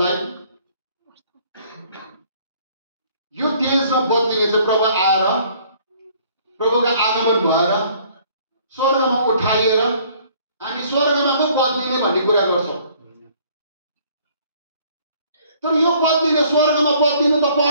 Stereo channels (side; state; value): both; inverted; correlation -0.59